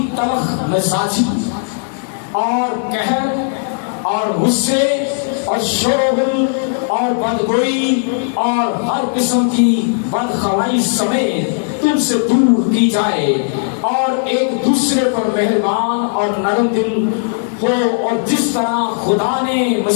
تلخ مزاجی اور قہر اور غصے اور شور و غل اور بدگوئی اور ہر قسم کی بدخوائی سمیت تم سے دور کی جائے اور ایک دوسرے پر مہربان اور نرم دل ہو، اور جس طرح خدا نے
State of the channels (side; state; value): right; silent; digital silence